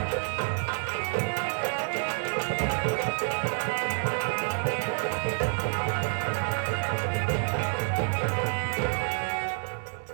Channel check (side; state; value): left; silent; 59 dB below the other